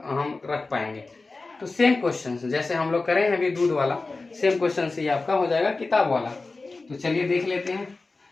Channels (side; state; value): right; quieter; 3.6 dB